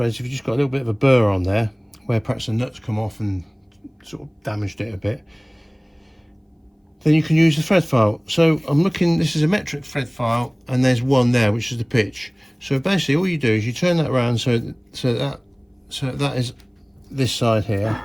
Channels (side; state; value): both; identical; correlation 1.00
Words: If you've just got a little bit of a burr on there where perhaps the nuts come off and sort of damaged it a bit, then you can use the thread file. So I'm looking, this is a metric thread file, and there's one there, which is the pitch. So basically all you do is you turn that around so that is this side here,